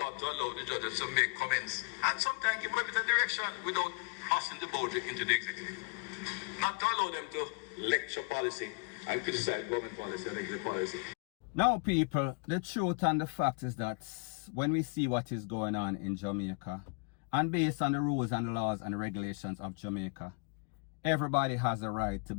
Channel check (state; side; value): quieter; right; 35.1 dB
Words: to allow the judges to make comments and sometimes give a bit of direction without crossing the boundary into the executive. Not to allow them to lecture policy and criticize government policy and executive policy. Now, people, the truth and the fact is that when we see what is going on in Jamaica, and based on the rules and the laws and the regulations of Jamaica, everybody has a right to